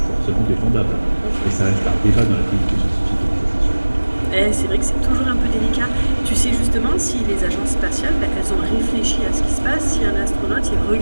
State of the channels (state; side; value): inverted; both; correlation -1.00